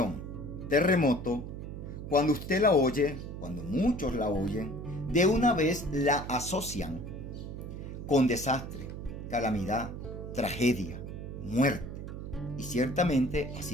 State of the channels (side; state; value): right; noise; hum, 8 dB below the sound